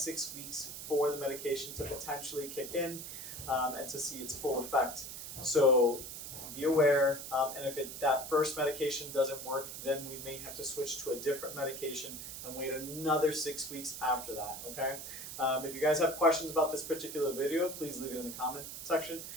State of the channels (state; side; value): noise; right; hiss, 9 dB below the sound